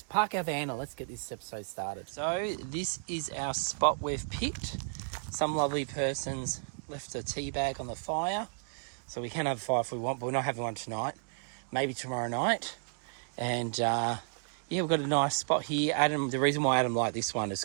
park our van and let's get this episode started. So this is our spot we've picked. Some lovely persons left a tea bag on the fire, so we can have a fire if we want, but we're not having one tonight. Maybe tomorrow night. And yeah, we've got a nice spot here. Adam, the reason why Adam liked this one is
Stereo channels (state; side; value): silent; left; digital silence